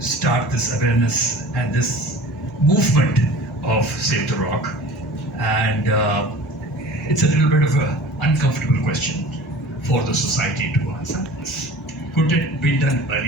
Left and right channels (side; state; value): both; normal; correlation 0.42